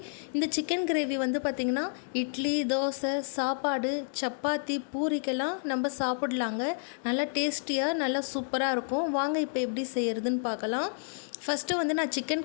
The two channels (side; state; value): right; silent; digital silence